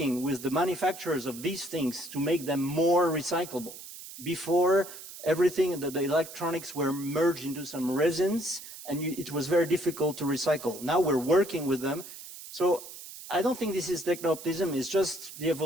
with the manufacturers of these things to make them more recyclable. Before, everything, the electronics were merged into some resins, and it was very difficult to recycle. Now we're working with them. So I don't think this is techno-optimism, it's just the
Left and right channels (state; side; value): noise; right; hiss, 14 dB below the sound